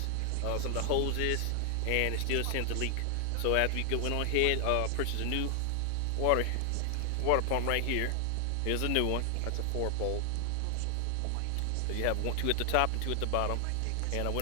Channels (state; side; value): different; both; correlation 0.00